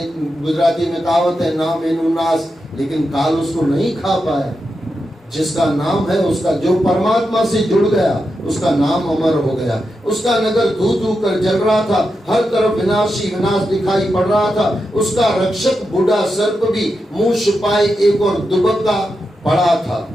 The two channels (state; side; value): normal; both; correlation 0.87